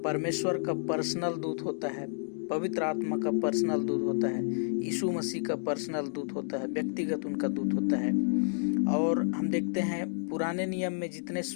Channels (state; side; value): silent; right; digital silence